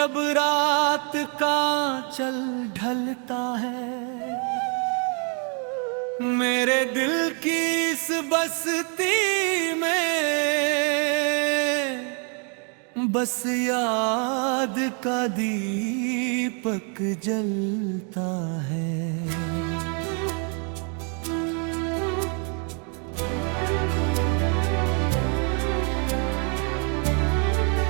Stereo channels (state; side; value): quieter; left; 38.9 dB